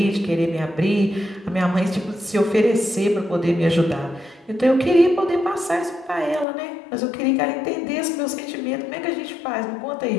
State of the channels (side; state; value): right; drops out; at 6.5 s